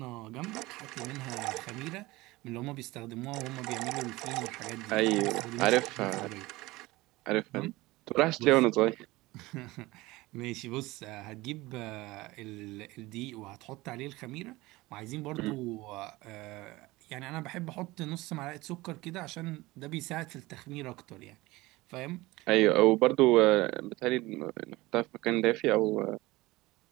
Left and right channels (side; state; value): left; quieter; 20.3 dB